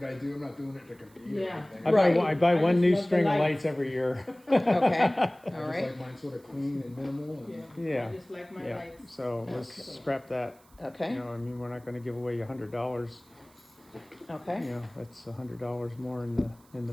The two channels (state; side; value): noise; right; hiss, 29 dB below the sound